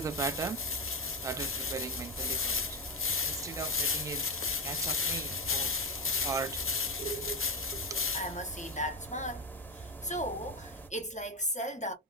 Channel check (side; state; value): both; normal; correlation 0.13